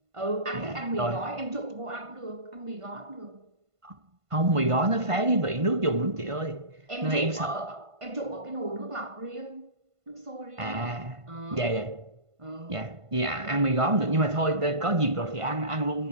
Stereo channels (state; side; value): late; left; 1.5 ms